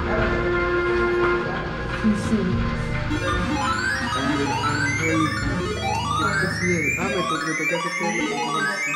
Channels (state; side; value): identical; both; correlation 1.00